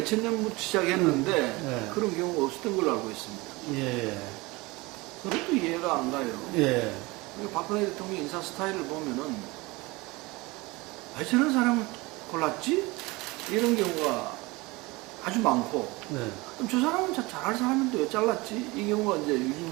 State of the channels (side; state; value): left; quieter; 23.2 dB